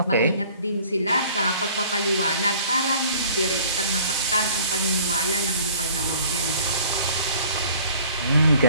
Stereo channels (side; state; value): both; inverted; correlation -0.52